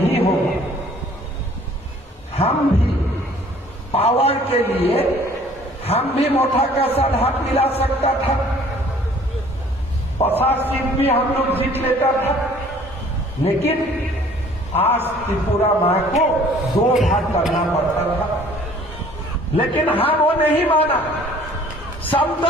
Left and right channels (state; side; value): normal; both; correlation 0.54